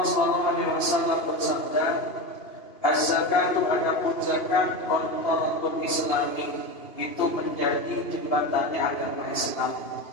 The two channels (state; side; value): late; right; 2.8 ms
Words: sallallahu alaihi wasallam bersabda, az-zakatu adapun zakat qantarul Islami, itu menjadi jembatannya agama Islam.